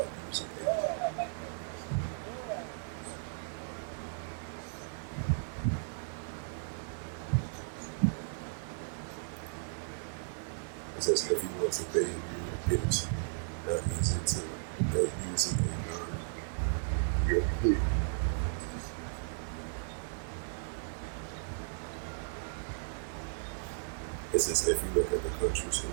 using PayPal. It says if you want to pay in Europe, it's not easy to using a non-European. It says if you look at the countries in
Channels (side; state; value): left; silent; 54 dB below the other